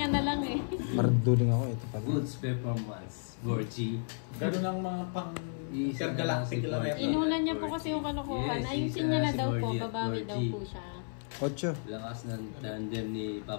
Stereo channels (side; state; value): right; silent; 56 dB below the other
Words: na lang eh. Marduling ako, ito pala. Goods performance. Gorgie. Ganun ang mga pang Isa na lang si intergalactic lang Gorgie. yan. Inunan niya po kasi yung kalokohan. Yes, Ayusin isa niya na si daw po. Gorgie at Babawi daw Gorgie. po siya. 8. Lakas ng tandem ni